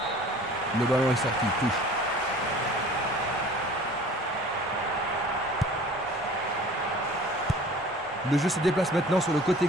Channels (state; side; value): normal; both; correlation 0.46